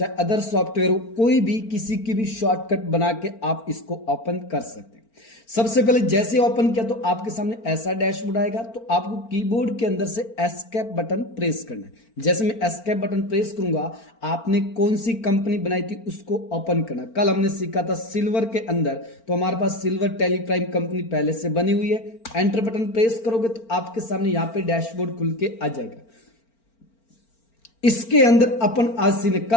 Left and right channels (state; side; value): late; right; 4.4 ms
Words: अदर सॉफ्टवेयर हो, कोई भी किसी की भी शॉर्टकट बना के आप इसको ओपन कर सकते हैं। सबसे पहले जैसे ओपन किया तो आपके सामने ऐसा डैशबोर्ड आएगा, तो आपको कीबोर्ड के अंदर से एस्केप बटन प्रेस करना है। जैसे मैं एस्केप बटन प्रेस करूंगा, आपने कौन सी कंपनी बनाई थी उसको ओपन करना। कल हमने सीखा था सिल्वर के अंदर, तो हमारे पास सिल्वर टैली प्राइम कंपनी पहले से बनी हुई है। एंटर बटन प्रेस करोगे तो आपके सामने यहाँ पे डैशबोर्ड खुल के आ जाएगा। इसके अंदर अपन आज सीखने,